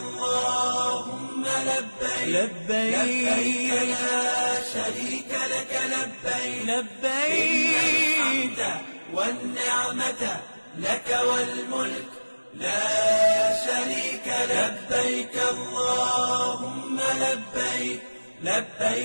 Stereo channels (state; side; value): inverted; both; correlation -1.00